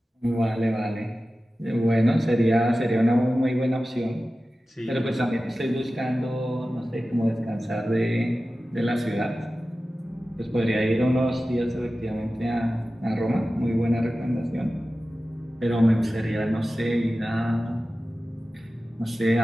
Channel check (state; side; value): normal; both; correlation 0.95